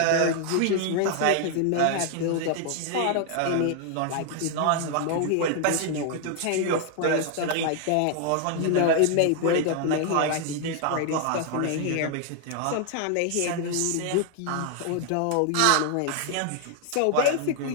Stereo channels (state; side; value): different; both; correlation 0.00